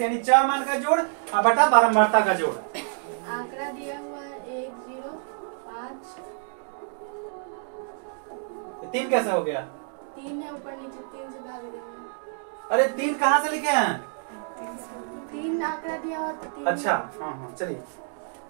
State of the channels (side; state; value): left; silent; 60 dB below the other